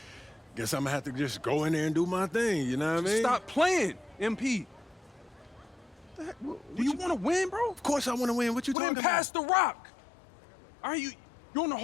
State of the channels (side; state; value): right; drops out; at 8.8 s